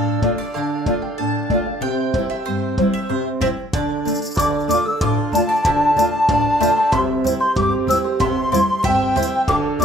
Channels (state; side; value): normal; both; correlation 0.64